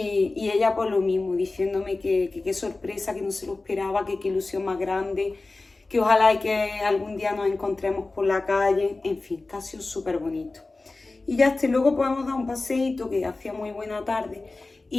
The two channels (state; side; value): quieter; right; 3.3 dB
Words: ella por lo mismo, diciéndome que qué sorpresa, que no se lo esperaba, que qué ilusión más grande, que ojalá y que algún día nos encontremos por la calle. En fin, que ha sido súper bonito. Y ya luego podemos dar un paseíto, que hacía muy buena tarde.